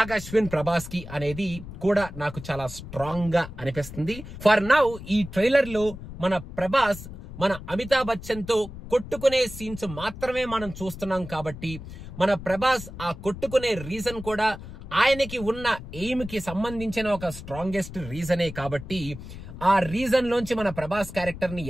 ప్రభాస్ కి అనేది కూడా నాకు చాలా స్ట్రాంగ్ గా అనిపిస్తుంది. ఫర్ నౌ ఈ ట్రైలర్ లో మన ప్రభాస్ మన అమితాబ్ బచ్చన్ తో కొట్టుకునే సీన్స్ మాత్రమే మనం చూస్తున్నాం. కాబట్టి మన ప్రభాస్ ఆ కొట్టుకునే రీజన్ కూడా ఆయనకి ఉన్న ఎయిమ్ కి సంబంధించిన ఒక స్ట్రాంగెస్ట్ రీజనే. కాబట్టి ఆ రీజన్ లోంచి మన ప్రభాస్ క్యారెక్టర్ ని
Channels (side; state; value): left; noise; rumble, 12 dB below the sound